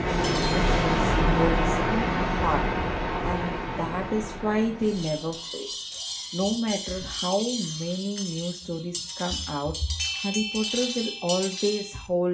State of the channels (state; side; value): identical; both; correlation 1.00